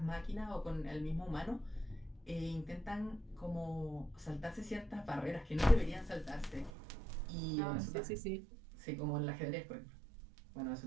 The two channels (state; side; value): drops out; left; at 6.7 s